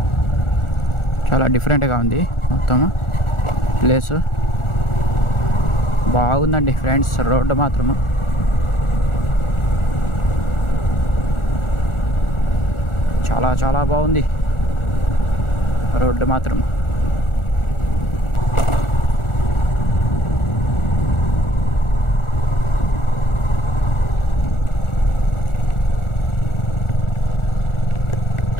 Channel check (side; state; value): right; late; 1.4 ms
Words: చాలా డిఫరెంట్గా ఉంది మొత్తం ప్లేసు. బాగుందండి ఫ్రెండ్స్. రోడ్డు మాత్రము చాలా చాలా బాగుంది. రోడ్డు మాత్రం